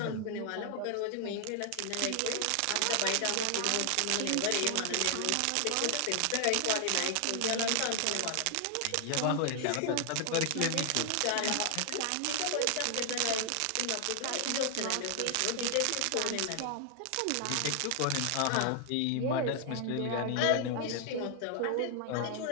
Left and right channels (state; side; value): different; both; correlation 0.00